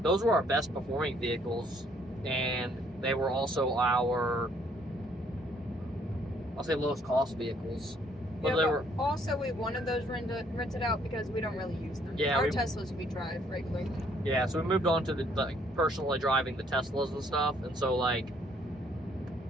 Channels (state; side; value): normal; both; correlation 0.65